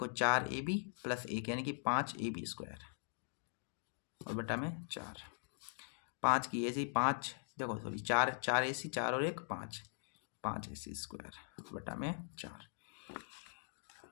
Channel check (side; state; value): right; silent; digital silence